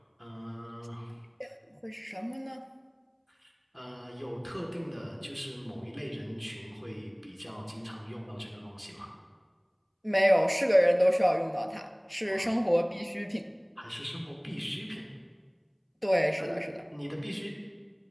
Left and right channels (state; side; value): identical; both; correlation 1.00